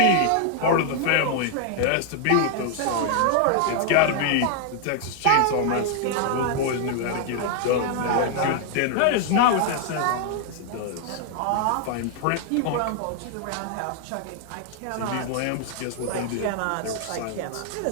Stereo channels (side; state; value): both; different; correlation 0.00